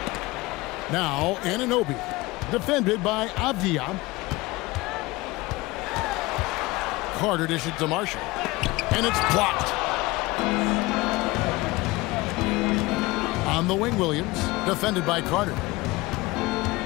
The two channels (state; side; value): quieter; right; 21.4 dB